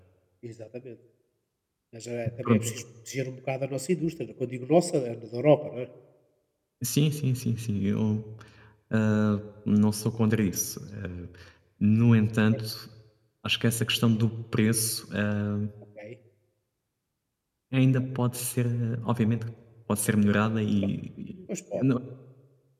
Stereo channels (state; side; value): identical; both; correlation 1.00